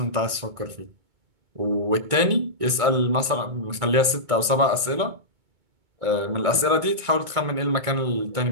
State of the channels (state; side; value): late; left; 2.2 ms